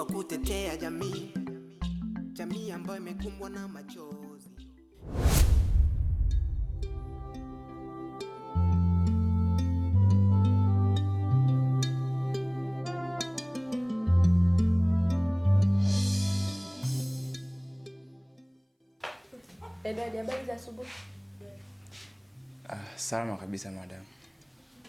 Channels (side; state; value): both; identical; correlation 1.00